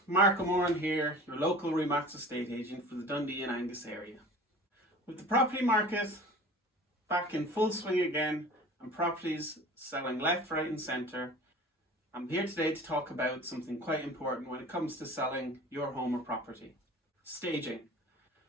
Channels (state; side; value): normal; both; correlation 0.40